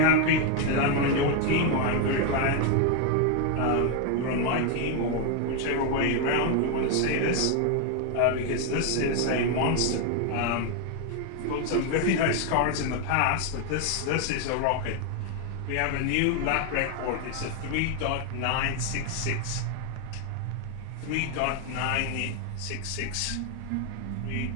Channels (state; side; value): different; both; correlation 0.01